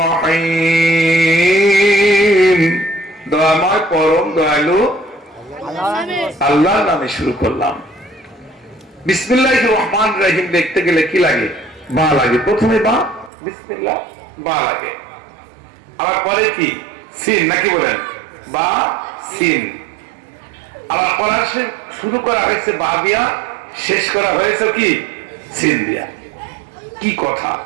দয়াময়, পরম দয়ালু আল্লাহর নামে শুরু করলাম। বিসমিল্লাহির রহমানির রহিম দেখতে গেলে কি লাগে? বা লাগে, প্রথমে বা বিসমিল্লাহ বা লাগে, আবার পরে কি সিন নাকি বলেন, বা সিন। আবার পড়া শুরু করা হয়েছে বা দিয়া, শেষ করা হয়েছে কি সিন দিয়া। কি কথা!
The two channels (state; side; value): drops out; left; at 13.3 s